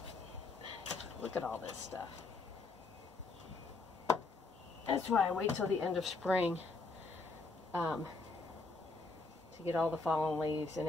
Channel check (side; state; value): right; quieter; 3.8 dB